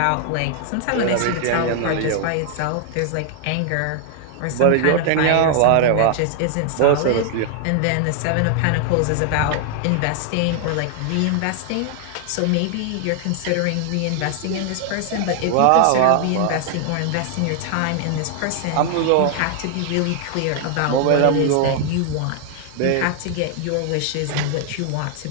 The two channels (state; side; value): different; both; correlation 0.00